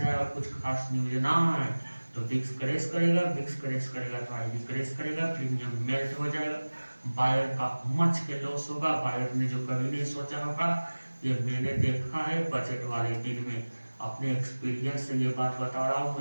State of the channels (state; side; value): inverted; both; correlation -1.00